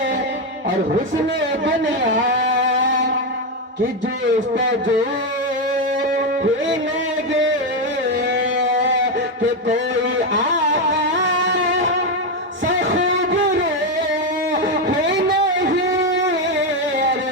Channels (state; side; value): normal; both; correlation 0.08